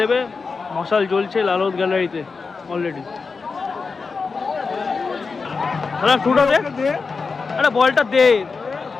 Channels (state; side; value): quieter; right; 4.7 dB